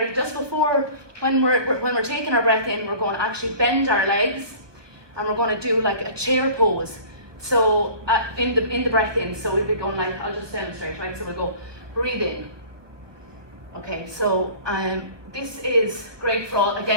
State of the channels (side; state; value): left; late; 1.2 ms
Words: just before, when we're taking our breath in, we're going to actually bend our legs, and we're going to do like a chair pose. So in the breath in, so we'll be going like, I'll just demonstrate, right? So we'll go, breathe in. Okay, so this is great for all